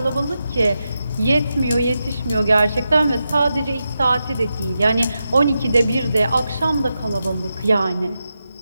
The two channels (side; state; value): both; inverted; correlation -0.89